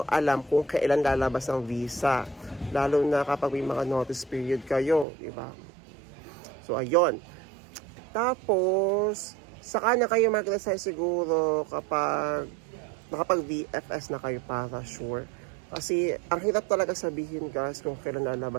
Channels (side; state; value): left; drops out; at 5.1 s